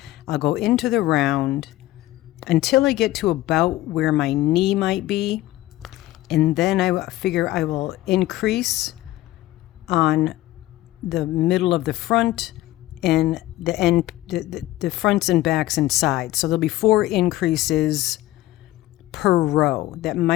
I'll go into the round until I get to about where my knee might be. And then I figure I will increase on the middle of the front and the end, the fronts and backs and sides. So there'll be 4 increases per row. That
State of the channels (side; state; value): right; quieter; 16.3 dB